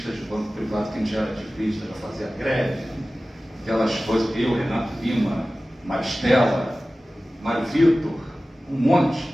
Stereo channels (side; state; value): both; normal; correlation 0.96